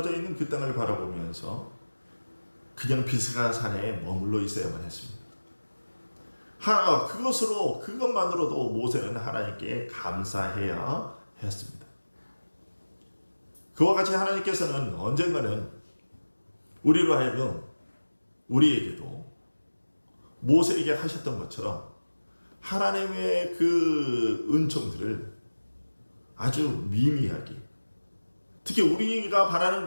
있는 그 땅을 바라보면서 그냥 비스가 산에 머물러 있어야만 했습니다. 그것만으로도 모세는 하나님께 감사해야 했습니다. 그와 같이 하나님께서는 언젠가는 우리로 하여금 우리에게도 모세에게 하셨던 것처럼 하나님의 그 은총들을 아주 미미하게, 특히 우리가 바라는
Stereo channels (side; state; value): both; inverted; correlation -1.00